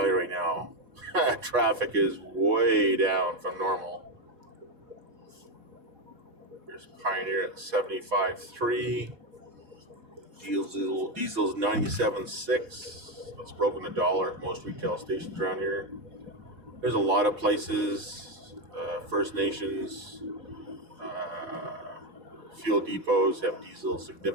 you right now, traffic is way down from normal. There's Pioneer at 75.3. Diesel's 97.6. That's broken the dollar at most retail stations around here. There's a lot of places, First Nations, fuel depots have diesel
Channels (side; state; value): left; late; 4.4 ms